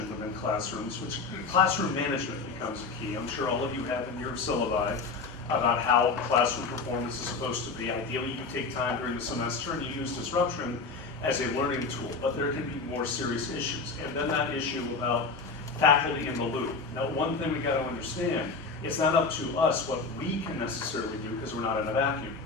within classrooms, which classroom management becomes a key. I'm sure all of you have in your syllabi about how classroom performance is supposed to be. Ideally, you take time during the semester and you use disruption as a learning tool, but there can be more serious issues. And then that issue about faculty in the loop. Now, one thing we got to understand, It's not up to us what we can necessarily do because we're not in a vacuum.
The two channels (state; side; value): quieter; right; 4.3 dB